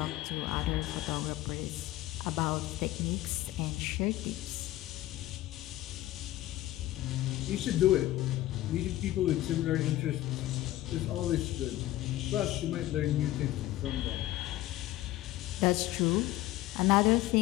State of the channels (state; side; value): quieter; right; 15.7 dB